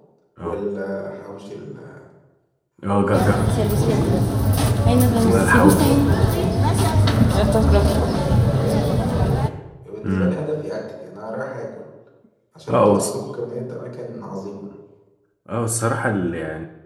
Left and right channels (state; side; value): identical; both; correlation 1.00